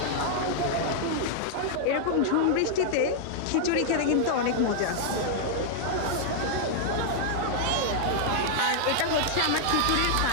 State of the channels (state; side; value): different; both; correlation -0.01